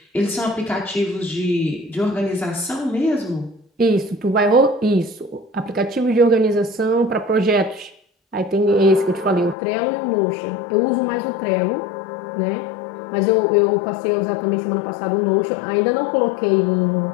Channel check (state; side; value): drops out; right; at 9.6 s